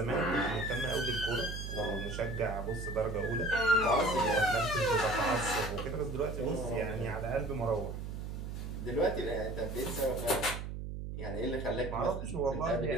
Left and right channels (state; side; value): noise; right; hum, 6 dB below the sound